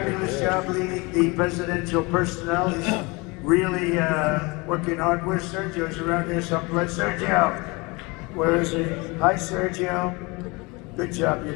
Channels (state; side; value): quieter; right; 26.1 dB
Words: job leading the presidential personnel. He's really working hard. Where's Sergio? He's around here someplace. Sergio, where is he? Hi, Sergio. Good job